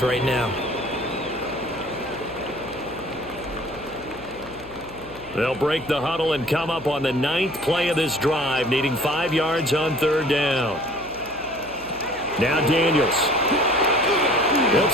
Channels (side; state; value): left; noise; hum, 20 dB below the sound